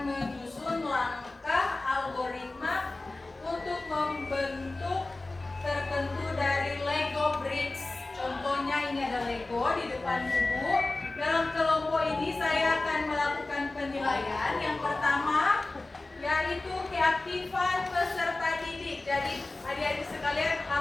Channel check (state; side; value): quieter; right; 3.1 dB